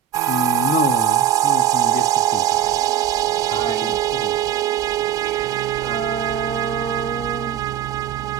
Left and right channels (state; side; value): quieter; left; 9.4 dB